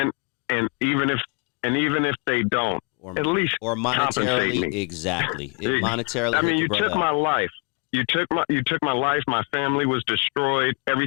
even if they don't. At least monetarily, exactly. Monetarily, I mean, you took my life. You took my life. My family was destroyed.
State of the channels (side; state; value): right; quieter; 36.5 dB